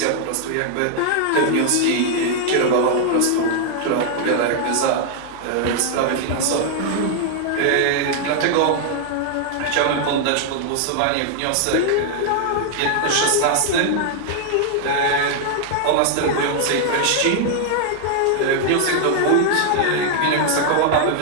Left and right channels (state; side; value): different; both; correlation 0.00